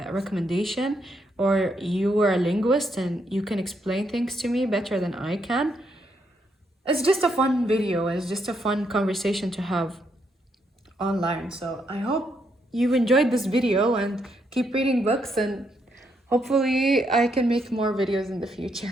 recommendation, or you are a linguist and you can explain things to me better than I can. It's just a fun video. It's just a fun conversation to have online. So I hope you enjoyed this video and keep reading books, and hopefully I can make more videos in the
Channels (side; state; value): both; normal; correlation 0.77